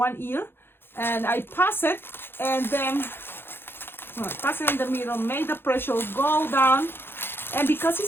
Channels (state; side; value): late; right; 0.10 ms